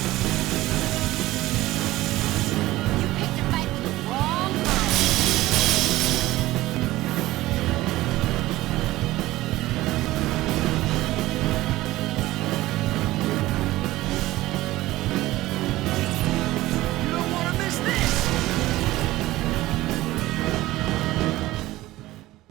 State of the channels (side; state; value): left; quieter; 17.2 dB